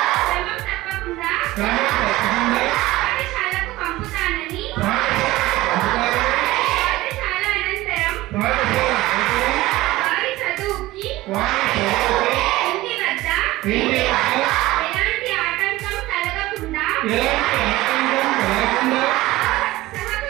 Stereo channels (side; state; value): left; quieter; 18.0 dB